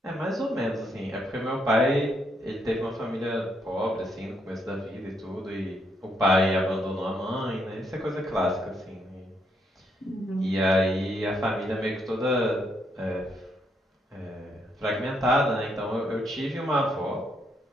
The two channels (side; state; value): both; normal; correlation 0.75